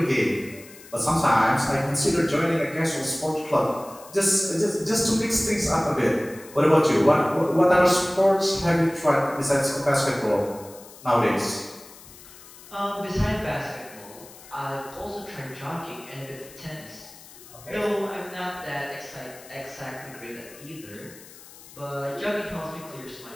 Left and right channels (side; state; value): left; noise; hiss, 20 dB below the sound